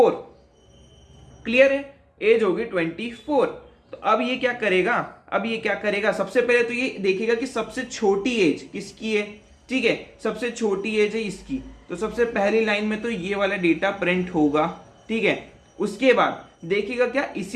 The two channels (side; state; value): both; identical; correlation 1.00